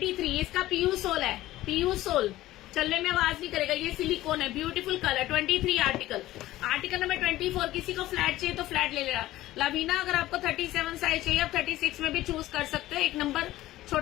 इसका पीयू सोल है, पीयू सोल, चलने में आवाज नहीं करेगा, ये सिलिकॉन है, beautiful colour. 23 article. Article number 24 किसी को फ्लैट चाहिए तो फ्लैट ले लेना। लवीना अगर आपको 37 साइज चाहिए, आप 36 में भी चूज कर सकते हो, एक नंबर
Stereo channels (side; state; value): right; quieter; 15.9 dB